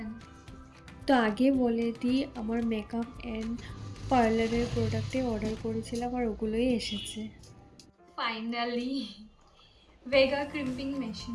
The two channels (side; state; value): both; identical; correlation 1.00